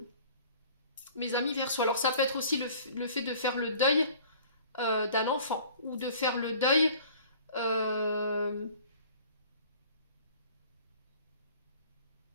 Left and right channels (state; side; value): inverted; both; correlation -0.49